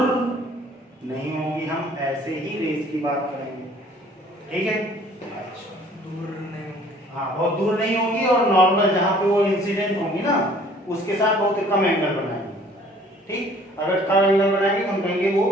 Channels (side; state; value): both; normal; correlation 0.55